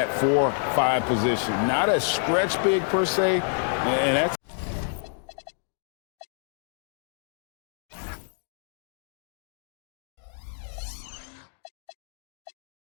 4-5 position. Not a stretch big per se, and that's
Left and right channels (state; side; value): silent; right; digital silence